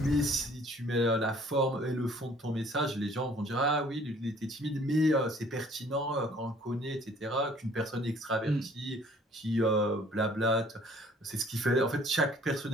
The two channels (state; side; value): normal; both; correlation 0.56